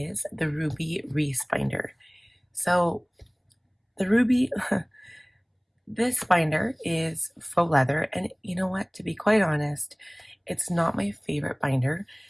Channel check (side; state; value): both; identical; correlation 1.00